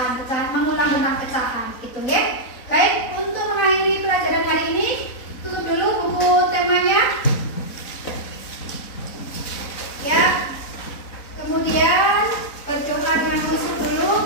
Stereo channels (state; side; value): late; right; 4.0 ms